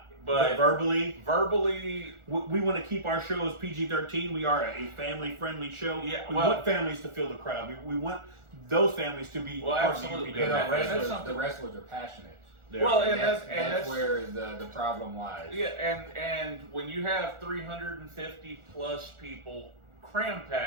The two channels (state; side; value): late; left; 1.4 ms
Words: But verbally, we want to keep our show as PG-13. We are a family-friendly show. Yeah, we well- want families to fill the crowd. We want those families to be part absolutely. of You UPW. know, That's the wrestlers are passionate. Well, And and that's that's where the problem lies. yeah, and when you have 350 plus people cram